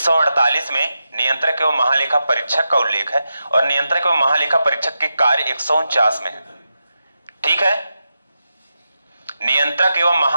में नियंत्रक एवं महालेखा परीक्षक का उल्लेख है, और नियंत्रक एवं महालेखा परीक्षक के कार्य 149 में है, ठीक है? नियंत्रक एवं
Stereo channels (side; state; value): both; inverted; correlation -0.89